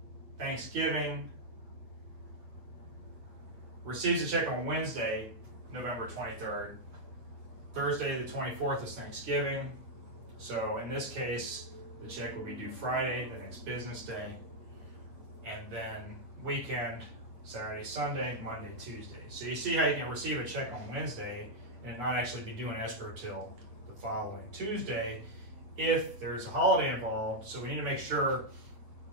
Thanksgiving, receives a check on Wednesday, November 23rd. Thursday, the 24th is Thanksgiving. So in this case, the check will be due Friday, the next business day, and then weekend, Saturday, Sunday, Monday, Tuesday. So you see how you can receive a check on Wednesday and not actually be doing escrow till the following Tuesday if there's a holiday involved. So we need to make sure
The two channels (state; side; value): late; left; 8.7 ms